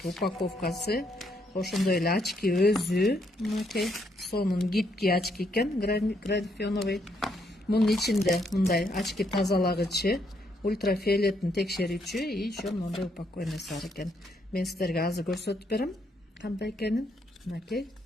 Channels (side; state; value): both; normal; correlation 0.74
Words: упаковкасы. Ошондой эле очки өзү, мынакей сонун гибкий очки экен, графеновый. Мунун ичинде мындай очки тазалагычы, ультрафиолеттин текшерүүчү и еще мындай упаковкасы бар экен. Мен сиздерге азыр көрсөтүп берем кандай экенин. Мынакей.